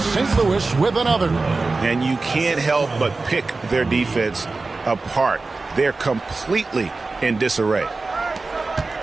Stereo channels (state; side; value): quieter; left; 3.7 dB